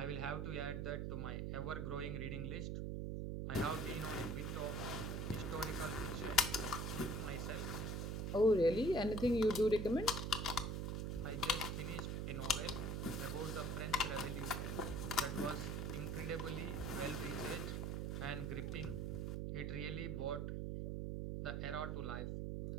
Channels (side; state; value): right; noise; hum, 1 dB below the sound